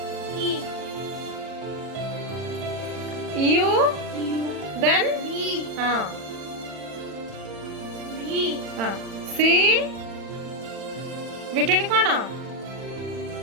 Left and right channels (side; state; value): left; late; 40 ms